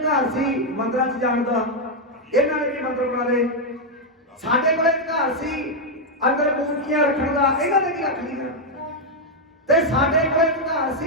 ਸੀ ਮੰਦਰਾਂ 'ਚ ਜਾਣ ਦਾ, ਇਹਨਾਂ ਨੇ ਵੀ ਮੰਦਰ ਬਣਾ ਲਏ। ਸਾਡੇ ਕੋਲ ਅਧਿਕਾਰ ਸੀ ਅੰਦਰ ਮੂਰਤੀਆਂ ਰੱਖਣ ਦਾ, ਇਹਨਾਂ ਨੇ ਵੀ ਰੱਖ ਲਈਆਂ। ਤੇ ਸਾਡੇ ਕੋਲ ਅਧਿਕਾਰ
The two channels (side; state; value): both; normal; correlation 0.01